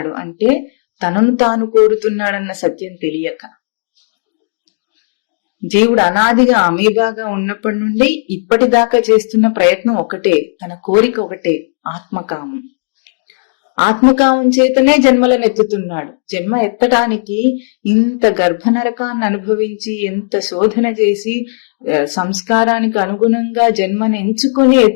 అంటే తనను తాను కోరుతున్నాడన్న సత్యం తెలియక. జీవుడు అనాదిగా అమీబాగా ఉన్నప్పటి నుండి ఇప్పటిదాకా చేస్తున్న ప్రయత్నం ఒకటే, తన కోరిక ఒకటే, ఆత్మకామం. ఆత్మకామం చేతనే జన్మలను ఎత్తుతున్నాడు. జన్మ ఎత్తడానికి ఇంత గర్భనరకాన్ని అనుభవించి, ఎంత శోధన చేసి సంస్కారానికి అనుగుణంగా జన్మను ఎంచుకొని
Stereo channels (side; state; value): right; silent; digital silence